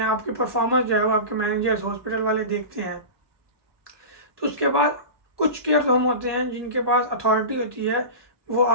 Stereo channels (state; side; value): late; left; 1.2 ms